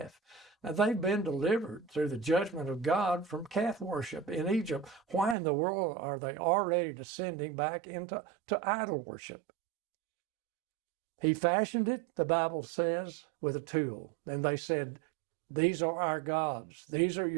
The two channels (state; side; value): drops out; left; at 5.4 s